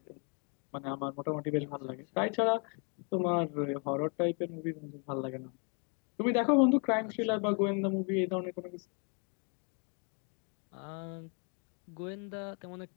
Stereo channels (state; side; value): quieter; right; 37.5 dB